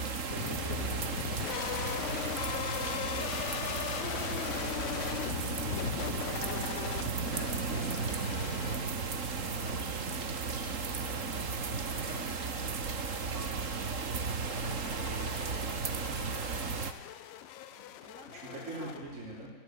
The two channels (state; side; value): late; left; 3.8 ms